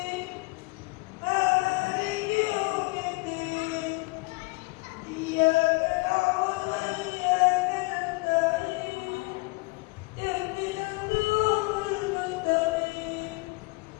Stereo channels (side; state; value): right; quieter; 26.6 dB